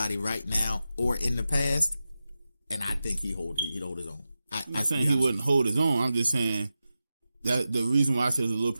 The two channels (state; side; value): inverted; both; correlation -0.92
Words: right now or in the past, and I think he'd hold his own. I'm not saying he wouldn't hold his own. I'm just saying that the reason why I said it's a little